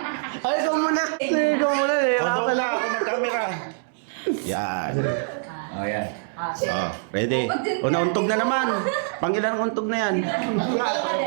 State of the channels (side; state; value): left; silent; digital silence